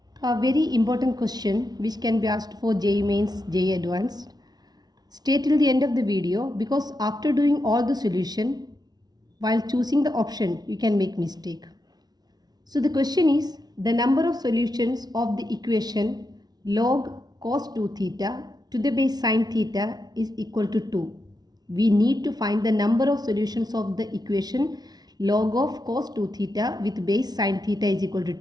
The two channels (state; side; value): late; left; 0.19 ms